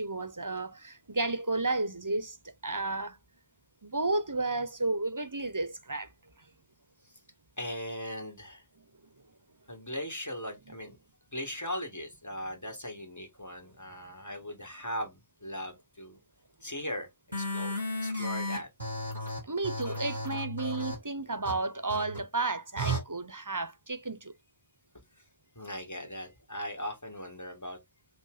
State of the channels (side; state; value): both; inverted; correlation -0.60